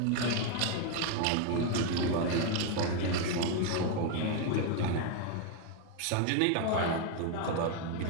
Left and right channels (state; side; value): different; both; correlation 0.01